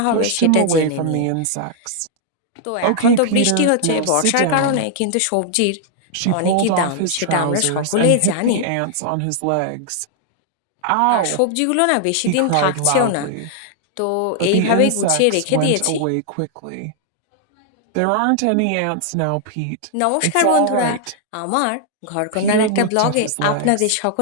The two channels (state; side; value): different; both; correlation 0.00